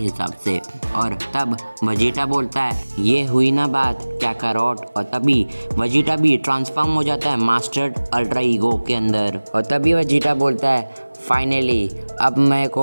से। और तब वजीटा बोलता है ये हुई ना बात कैकारोट। और तभी वजीटा भी ट्रांसफॉर्म हो जाता है मास्टर्ड अल्ट्रा ईगो के अंदर। और तभी वजीटा बोलता है फाइनली अब मेरे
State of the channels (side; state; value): both; inverted; correlation -1.00